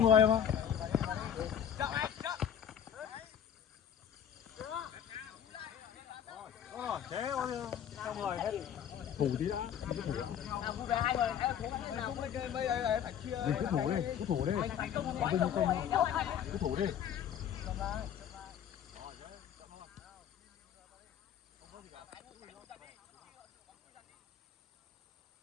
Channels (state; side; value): quieter; right; 9.1 dB